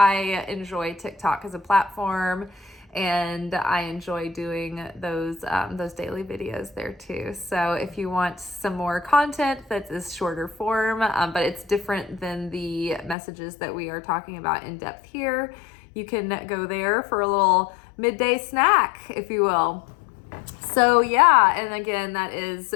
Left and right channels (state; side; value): drops out; right; at 13.2 s